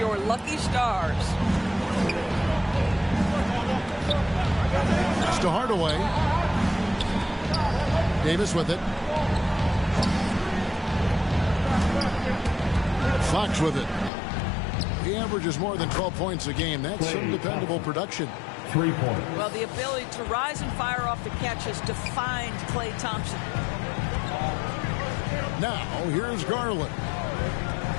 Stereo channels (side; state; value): right; drops out; at 14.1 s